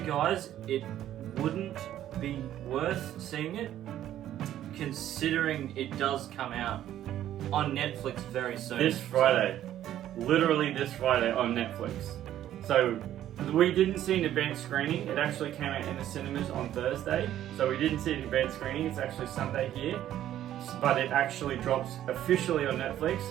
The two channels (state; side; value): quieter; left; 12.0 dB